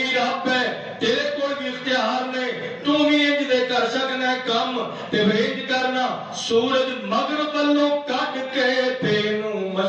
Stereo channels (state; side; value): identical; both; correlation 1.00